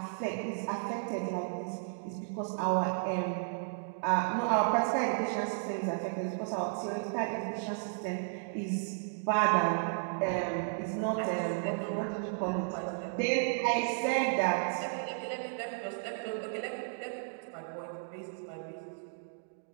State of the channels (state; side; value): silent; left; digital silence